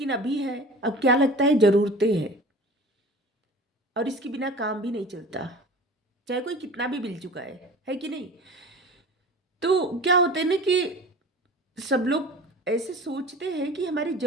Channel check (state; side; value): normal; both; correlation 0.40